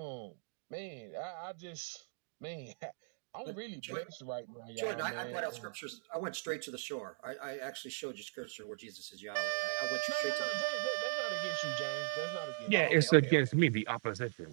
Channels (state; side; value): silent; left; digital silence